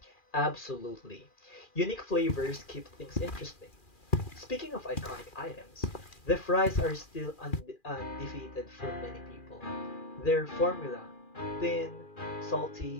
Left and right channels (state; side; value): late; right; 2.4 ms